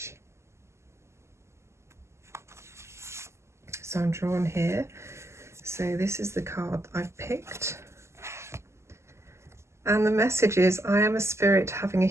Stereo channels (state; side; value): late; left; 0.13 ms